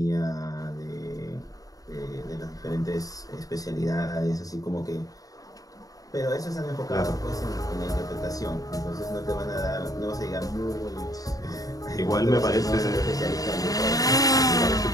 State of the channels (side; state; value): right; late; 0.17 ms